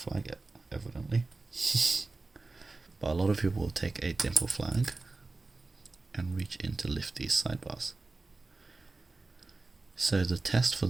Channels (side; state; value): left; quieter; 3.5 dB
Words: evidently. But a lot of people will take a Dimple flag and reach in to lift these sidebars. So the test for